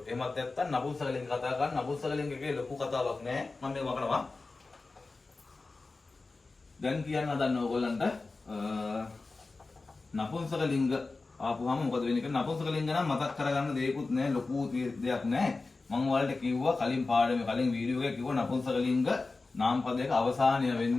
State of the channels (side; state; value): right; quieter; 3.7 dB